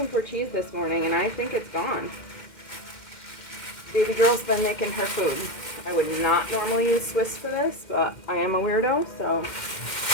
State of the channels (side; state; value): right; late; 2.1 ms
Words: for cheese this morning, and I think it's gone. Baby girl's been making her food. I would not normally use Swiss for this, but I am a weirdo, so